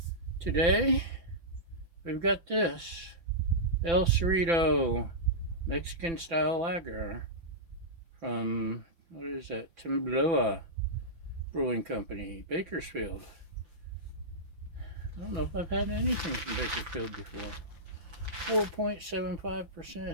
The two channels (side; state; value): left; late; 6.0 ms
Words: Today, we've got this El Cerrito Mexican style lager from, what is that, Temblor Brewing Company, Bakersfield. I don't know if I've had anything from Bakersfield before.